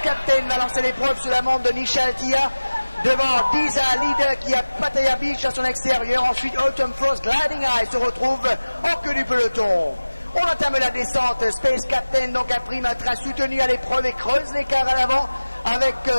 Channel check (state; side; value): inverted; both; correlation -1.00